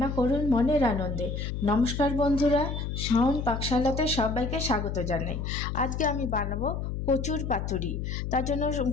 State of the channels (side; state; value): left; noise; hum, 4 dB below the sound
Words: করুন মনের আনন্দে। নমস্কার বন্ধুরা, শাওন পাকশালাতে সবাইকে স্বাগত জানাই। আজকে আমি বানাবো কচুর পাতুরি। তার জন্য